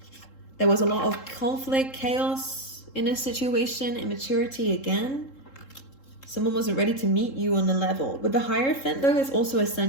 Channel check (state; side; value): late; right; 3.7 ms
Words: There was a lot of conflict, chaos in this situation, immaturity again. Someone wasn't ready to meet you on the level. With the Hierophant though, it's also